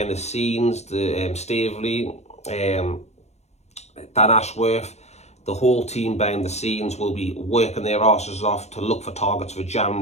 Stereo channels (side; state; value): right; late; 0.32 ms